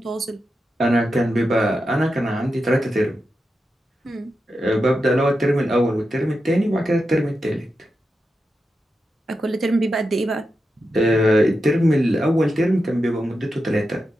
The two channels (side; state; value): both; normal; correlation 0.89